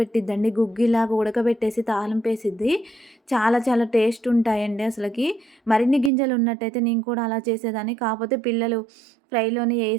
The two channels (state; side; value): drops out; left; at 6.1 s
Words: గుగ్గిలాగా ఉడకబెట్టేసి తాలింపేసిద్ది. చాలా చాలా టేస్ట్ ఉంటాయండి అసలకి. మరిన్ని గింజలున్నట్టయితే నేను కూడా అలా చేసేదాన్ని. కాపోతే పిల్లలు ఫ్రైలోనే